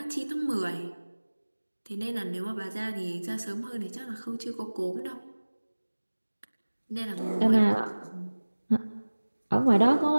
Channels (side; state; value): both; inverted; correlation -1.00